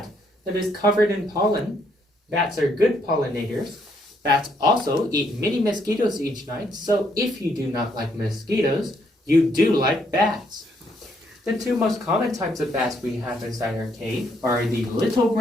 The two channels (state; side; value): normal; both; correlation 0.72